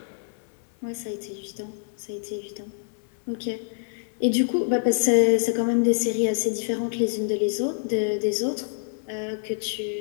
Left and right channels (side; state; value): right; silent; 61 dB below the other